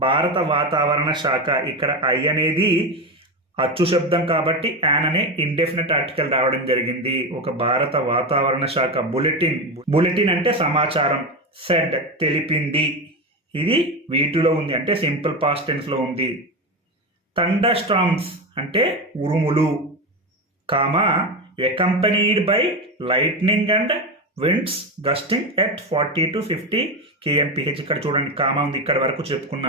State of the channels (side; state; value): both; normal; correlation 0.17